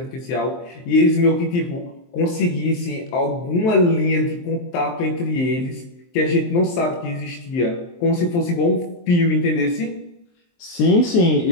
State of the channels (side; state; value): right; late; 23 ms